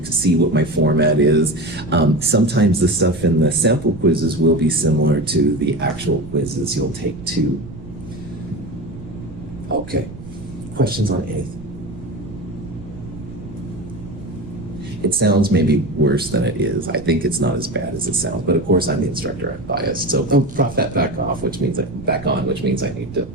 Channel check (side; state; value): right; noise; rumble, 15 dB below the sound